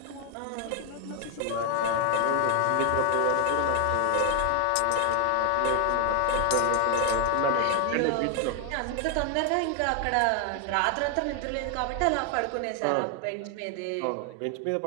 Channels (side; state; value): both; different; correlation 0.00